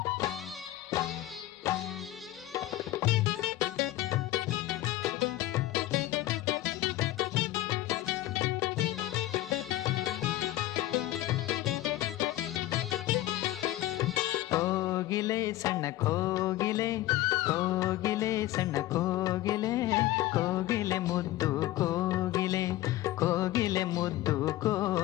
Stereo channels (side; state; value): right; quieter; 15.7 dB